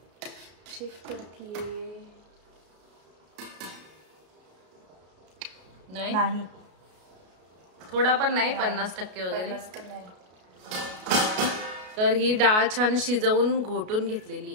चेक करतीये। नाही थोडा पण नाही, 50% वगैरे। तर ही डाळ छान शिजवून घोटून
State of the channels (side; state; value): left; late; 33 ms